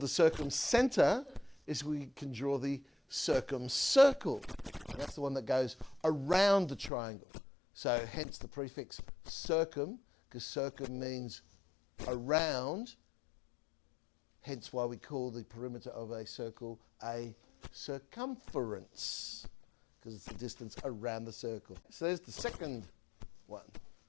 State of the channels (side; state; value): right; drops out; at 6.9 s